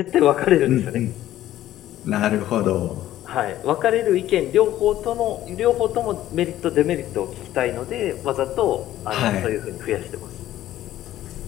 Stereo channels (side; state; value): right; quieter; 13.5 dB